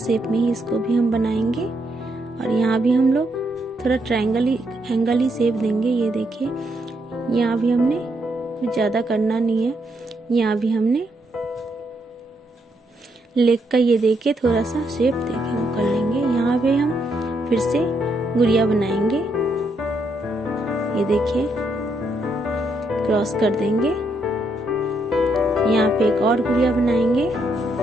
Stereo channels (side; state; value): both; normal; correlation 0.77